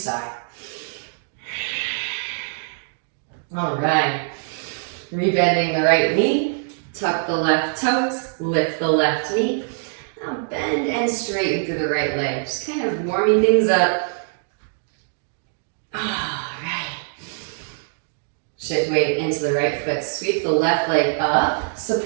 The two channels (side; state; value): left; silent; digital silence